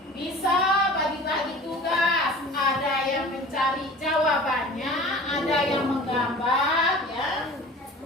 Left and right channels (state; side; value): normal; both; correlation 0.41